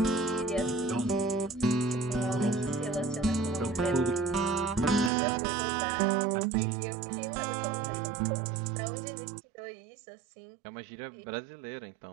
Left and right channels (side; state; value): left; drops out; at 5.1 s